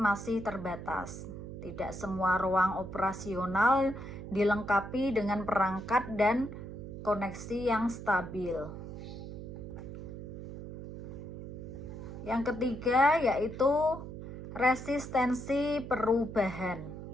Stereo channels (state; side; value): noise; right; hum, 10 dB below the sound